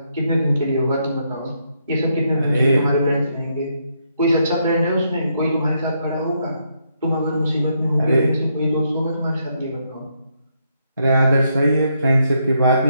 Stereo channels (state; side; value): inverted; both; correlation -0.77